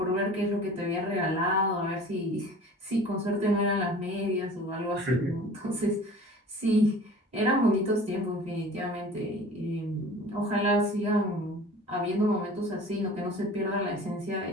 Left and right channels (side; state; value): both; normal; correlation 0.43